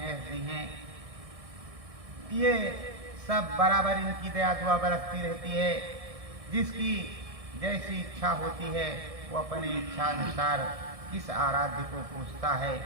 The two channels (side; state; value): left; late; 1.6 ms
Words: जी हैं, ये सब बराबर इनकी दया दुआ बरसती रहती है। जिसकी जैसी इच्छा होती है, वो अपनी इच्छा अनुसार किस आराध्य को पूजता है,